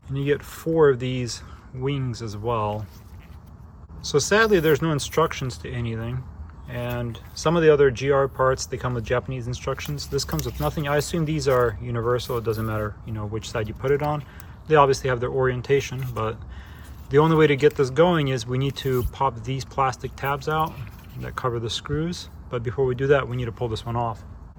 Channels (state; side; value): identical; both; correlation 1.00